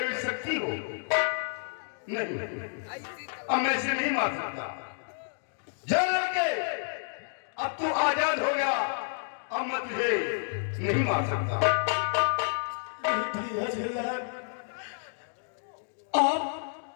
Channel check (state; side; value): silent; right; digital silence